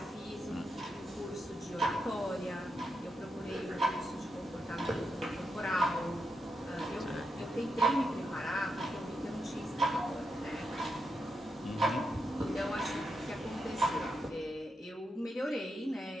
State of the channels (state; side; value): normal; both; correlation 0.84